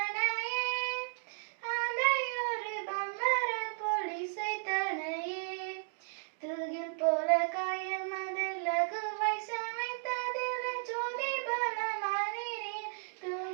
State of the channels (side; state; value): left; silent; digital silence